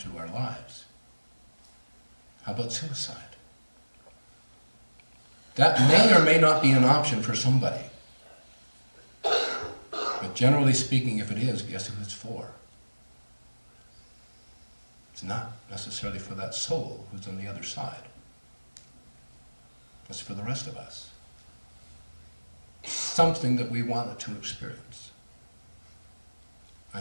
our lives, how about suicide? That may or may not be an option for somebody. But generally speaking, if it is, guess who it's for? It's not necessarily for that soul who's on the other side. It's for the rest of us. Something that we wanted to experience.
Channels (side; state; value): both; inverted; correlation -1.00